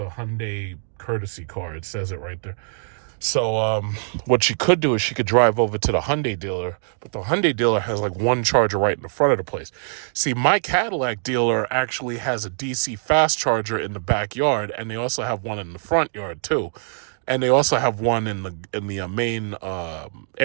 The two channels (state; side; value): silent; left; digital silence